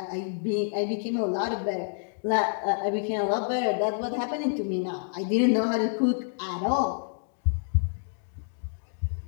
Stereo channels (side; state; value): right; silent; digital silence